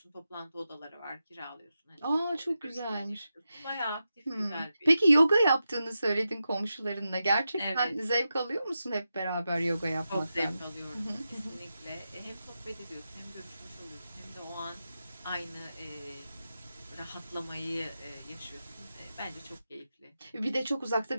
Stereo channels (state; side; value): inverted; both; correlation -0.90